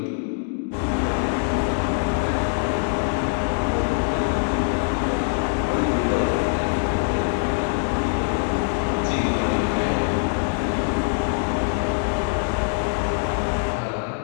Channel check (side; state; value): right; silent; digital silence